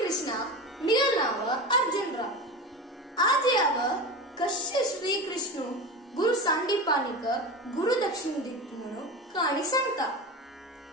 कृष्णा निगनाव अर्जुनराव. आज यावं कसे श्रीकृष्ण गुरु सांडीपानीक गुरु दक्षिण दित म्हणून कहाणी सांगता.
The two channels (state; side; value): normal; both; correlation 0.26